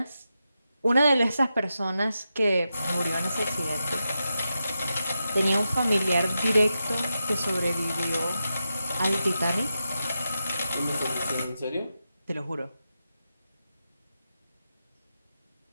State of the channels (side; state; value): both; inverted; correlation -0.88